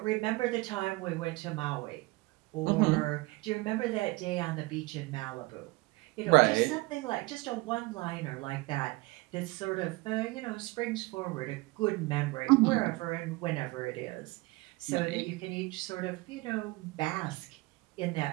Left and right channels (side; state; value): left; quieter; 23.1 dB